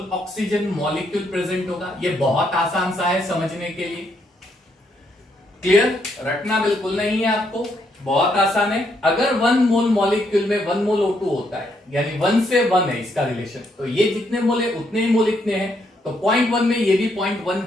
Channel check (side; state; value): both; normal; correlation 0.75